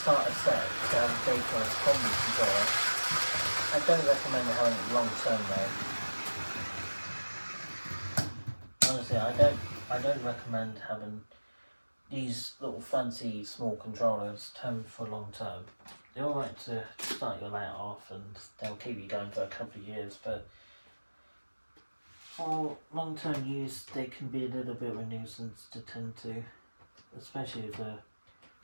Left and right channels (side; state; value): both; inverted; correlation -1.00